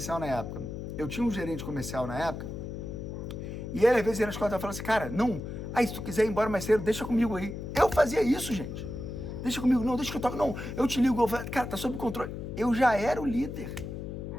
na época? Eu tinha um gerente comercial na época, e ele às vezes ia na escola e falava assim, cara, não, se tu quiser ir embora mais cedo, deixa comigo aí. Eu fazia isso, gente. Deixa comigo, não, deixa que eu toque, não, eu te ligo, cara, tá sob controle. Eu já era o líder.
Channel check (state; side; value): noise; left; hum, 7 dB below the sound